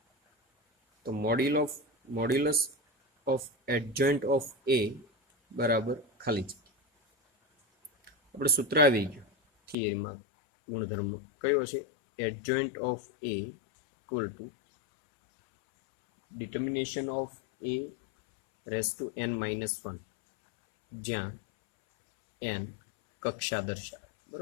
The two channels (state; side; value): drops out; right; at 9.8 s